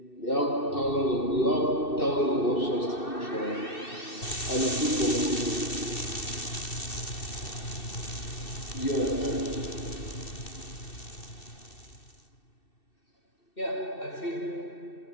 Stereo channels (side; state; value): right; late; 2.6 ms